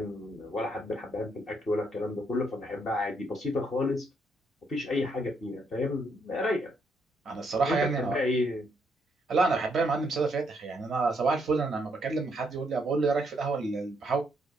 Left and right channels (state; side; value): normal; both; correlation 0.74